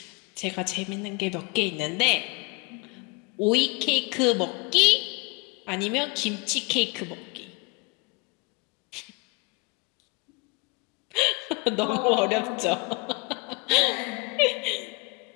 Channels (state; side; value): quieter; right; 29.5 dB